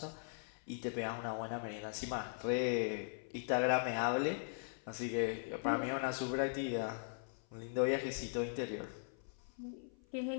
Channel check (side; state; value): right; silent; 51 dB below the other